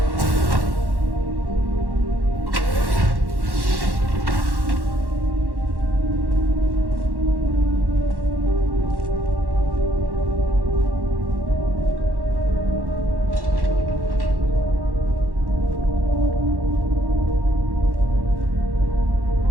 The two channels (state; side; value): late; left; 1.1 ms